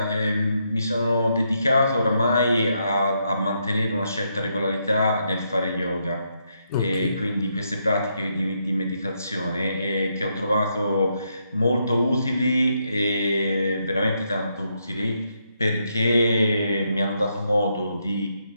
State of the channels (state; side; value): inverted; both; correlation -0.79